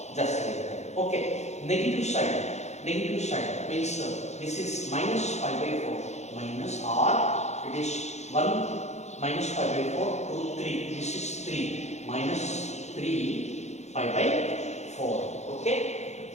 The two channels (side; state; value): right; late; 0.33 ms